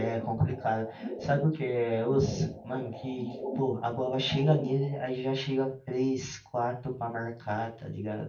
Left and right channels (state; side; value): identical; both; correlation 1.00